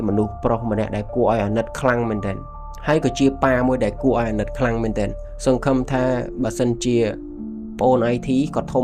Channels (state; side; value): identical; both; correlation 1.00